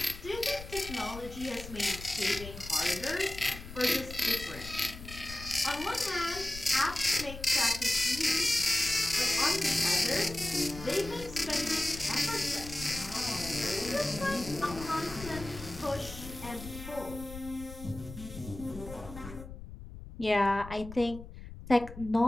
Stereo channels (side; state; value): left; noise; rumble, 12 dB below the sound